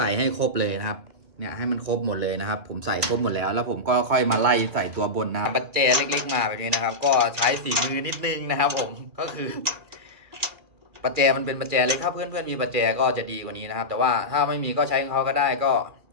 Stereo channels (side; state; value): left; late; 2.4 ms